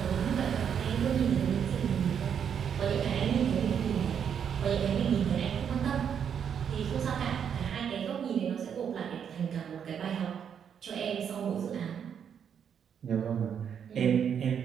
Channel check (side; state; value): left; quieter; 8.0 dB